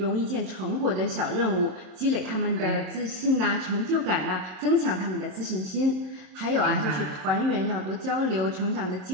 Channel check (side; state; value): left; late; 27 ms